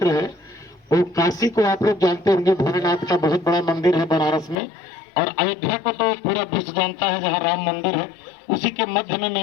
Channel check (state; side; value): drops out; right; at 4.5 s